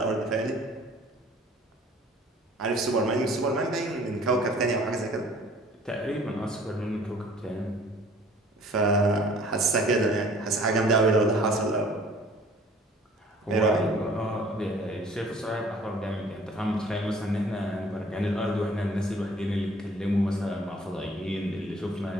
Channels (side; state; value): both; normal; correlation 0.52